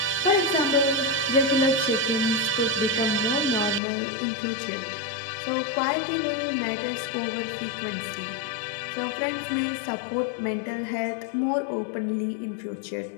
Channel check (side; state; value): right; drops out; at 3.8 s